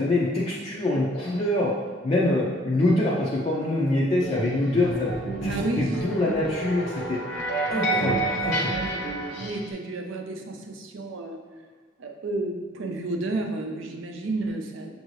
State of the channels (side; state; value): both; normal; correlation 0.58